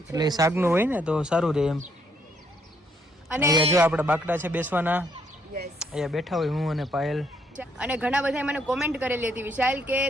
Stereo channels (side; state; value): both; normal; correlation 0.71